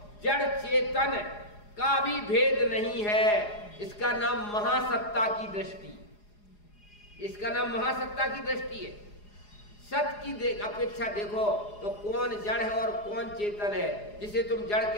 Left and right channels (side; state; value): right; late; 4.8 ms